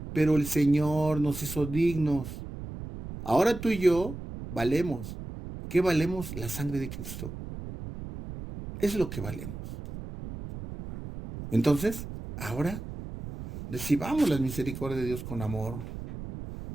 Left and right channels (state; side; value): noise; right; rumble, 10 dB below the sound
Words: pero el Señor nos hizo dignos. Ahora tú y yo valemos. ¿Qué valemos? La sangre de Cristo. Es lo que valemos. Entonces, ahora recibamos las misericordias de Dios con amor.